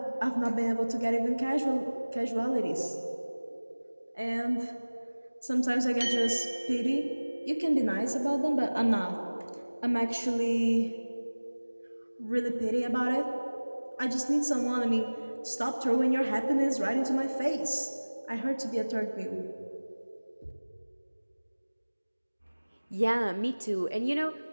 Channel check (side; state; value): both; inverted; correlation -1.00